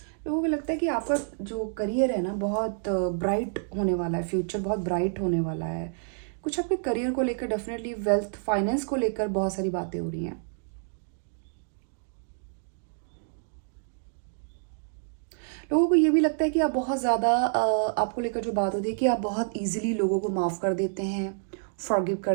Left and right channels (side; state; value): left; silent; digital silence